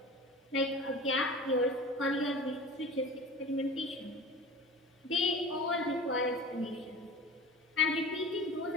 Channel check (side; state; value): both; normal; correlation 0.37